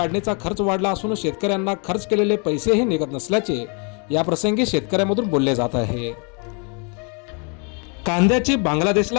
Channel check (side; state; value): right; quieter; 36.5 dB